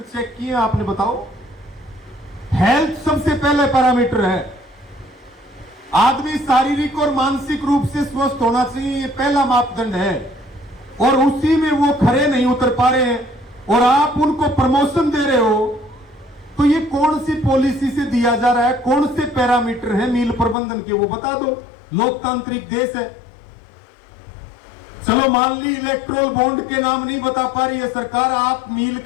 चेक किए आपने बताओ। हेल्थ सबसे पहले पैरामीटर है। आदमी शारीरिक और मानसिक रूप से स्वस्थ होना चाहिए, ये पहला मापदंड है, और उसी में वो खरे नहीं उतर पा रहे हैं, और आप उनको प्रमोशन दे रहे हो। तो ये कौन सी पॉलिसी से दिया जा रहा है, कौन से पैरामीटर है मील प्रबंधन के, वो बता दो। लोकतांत्रिक देश है। चलो मान ली इलेक्ट्रोल बॉन्ड के नाम नहीं बता पा रही है सरकार, आप मील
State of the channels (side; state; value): right; drops out; at 20.6 s